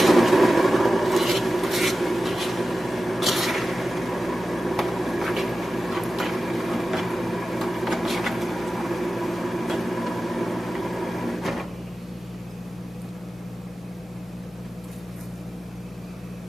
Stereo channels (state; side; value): normal; both; correlation 0.94